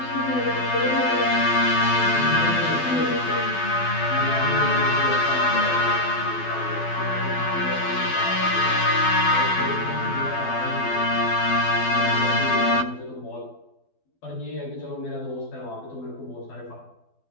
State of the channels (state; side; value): late; right; 12 ms